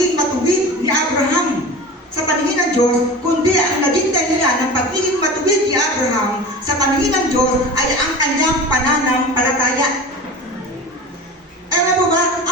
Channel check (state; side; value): normal; both; correlation 0.34